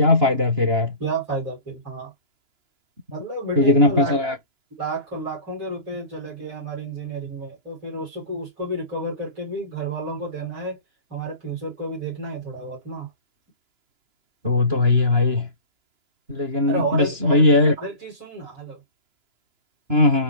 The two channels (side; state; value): left; late; 2.9 ms